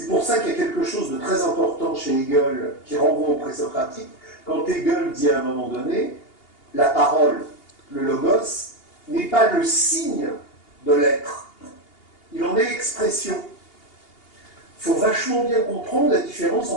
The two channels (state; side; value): late; right; 2.8 ms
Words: pour ça qu'il y a quelque chose de très important chez Hegel qui renvoie au présocratique, quand Hegel dit à un moment donné, la parole, le logos, n'est pas le signe de l'être, il en est l'expression. Il faut vachement bien comprendre la différence